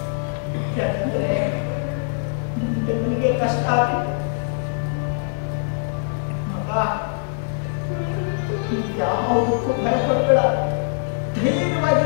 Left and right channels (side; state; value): right; silent; 55 dB below the other